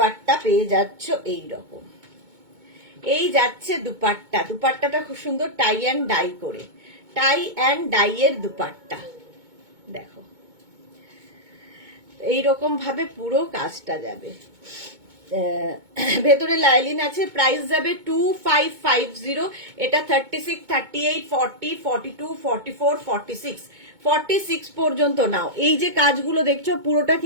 পেয়ে যাচ্ছ এই রকম। এই যাচ্ছে দুপাট্টা, দুপাট্টাটা খুব সুন্দর টাই অ্যান্ড ডাই করে, টাই অ্যান্ড ডাই এর দুপাট্টা দেখো, এইরকম ভাবে পুরো কাজটা যাবে। ভেতরে লাইলিন আছে, প্রাইস যাবে 2550। এটা 36, 38, 40, 42, 44, 46, 46 পর্যন্ত নাও। এই যে কাজগুলো দেখছো পুরোটা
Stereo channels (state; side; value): late; left; 2.2 ms